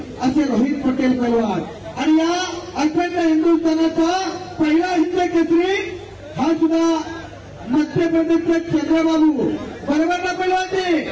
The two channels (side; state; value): both; identical; correlation 1.00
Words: असे रोहित पटेल पैलवान. आणि या अखंड हिंदुस्थानाचा पहिला हिंद केसरी हा सुद्धा मध्य प्रदेशचे चंद्रबाबू बरोबर ना पैलवान ते